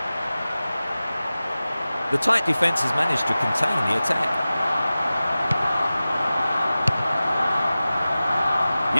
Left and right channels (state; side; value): inverted; both; correlation -0.96